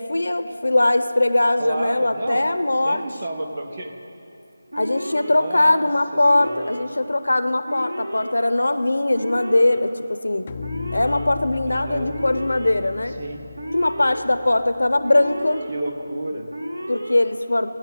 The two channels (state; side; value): inverted; both; correlation -0.98